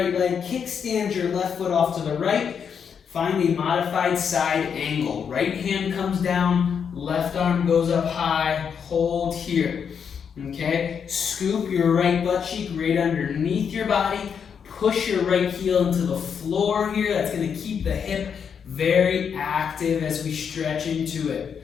leg. Kickstand your left foot off to the right. Find a modified side angle. Right hand comes down. Left arm goes up high. Hold here. Okay? Scoop your right butt cheek right underneath your body. Push your right heel into the floor here. That's going to keep the hip very active as we stretch into it.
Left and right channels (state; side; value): quieter; right; 7.1 dB